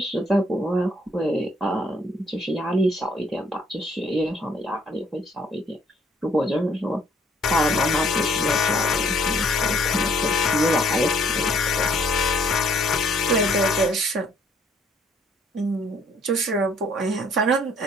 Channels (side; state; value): both; normal; correlation 0.63